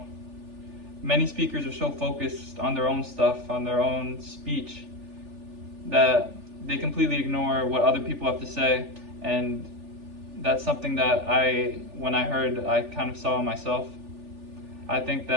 many speakers are so focused on their own stuff, on their own speech, that they completely ignore what other people have to say, and that's something that when I heard, I kind of saw in myself. I think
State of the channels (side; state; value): left; late; 3.4 ms